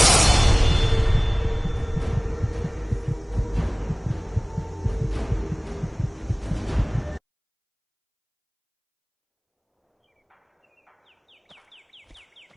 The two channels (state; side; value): identical; both; correlation 1.00